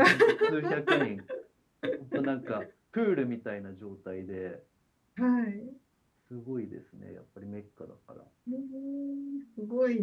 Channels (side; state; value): both; identical; correlation 1.00